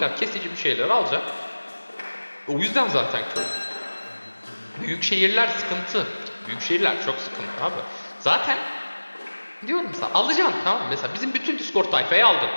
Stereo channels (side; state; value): both; inverted; correlation -1.00